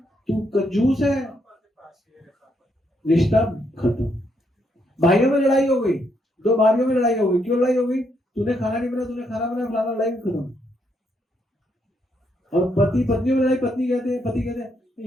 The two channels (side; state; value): both; normal; correlation 0.76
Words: तू कंजूस है, रिश्ता खत्म। भाइयों में लड़ाई हो गई, 2 भाइयों में लड़ाई हो गई, क्यों लड़ाई हो गई? तूने खाना नहीं बनाया, तूने खाना बनाया, फलाना, लड़ाई खत्म। और पति पत्नियों में लड़ाई, पति कहते हैं